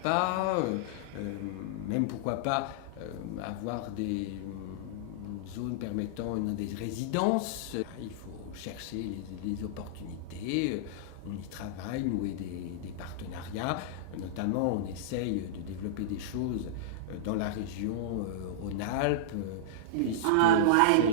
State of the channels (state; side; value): different; both; correlation -0.02